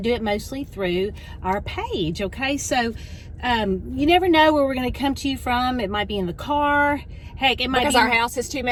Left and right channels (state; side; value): identical; both; correlation 1.00